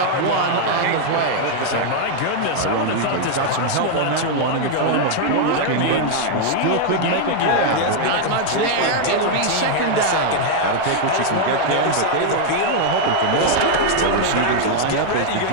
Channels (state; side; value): different; both; correlation 0.00